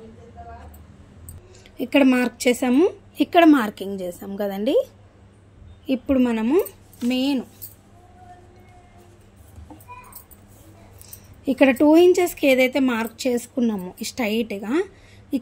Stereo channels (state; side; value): identical; both; correlation 1.00